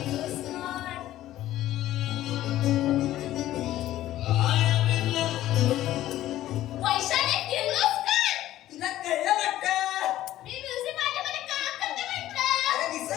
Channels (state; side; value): quieter; right; 14.0 dB